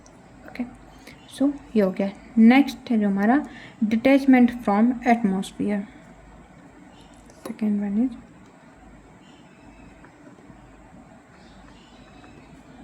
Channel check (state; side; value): identical; both; correlation 1.00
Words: Okay, so ये हो गया। नेक्स्ट है जो हमारा detachment from atmosphere. Second one is